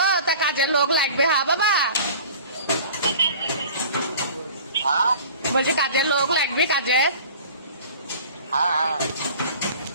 তা কাজের লোক লাগবে, হ্যাঁ বাবা। हाँ বলছি কাজের লোক লাগবে, কাজের।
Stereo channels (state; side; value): inverted; both; correlation -0.43